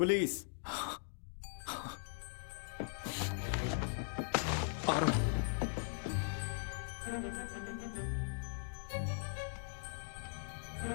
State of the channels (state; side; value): silent; right; digital silence